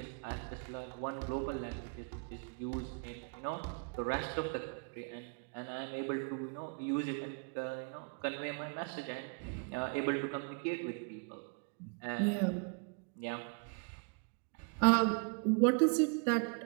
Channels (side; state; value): left; quieter; 36.7 dB